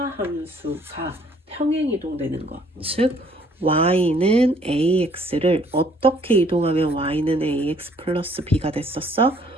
함수가 평행이동되는 것, 즉 y는 ax를 어떻게 이동하면 y는 ax 플러스 b가 됐었어?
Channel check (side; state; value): both; normal; correlation 0.61